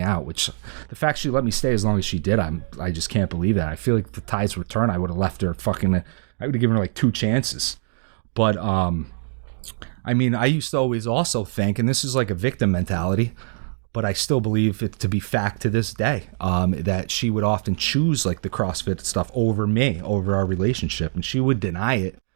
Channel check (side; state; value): left; silent; digital silence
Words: out, which the fact she let me stay as long as she did, I just can't believe that. I feel like the tides would turn. I would have left her I would have given her like 2 chances. But, I mean, I used to always also think, and this is like a victim mentality, but I still believe it to be fact to this day, that she would often choose like the CrossFit stuff over me, over our relationship, and she would deny it.